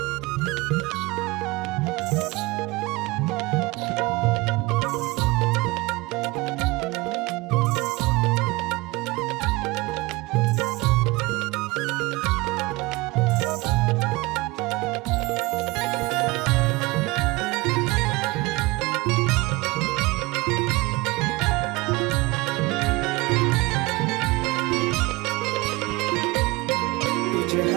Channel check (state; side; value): quieter; left; 23.0 dB